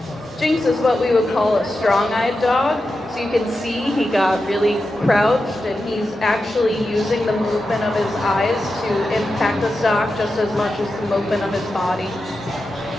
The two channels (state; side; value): normal; both; correlation 0.90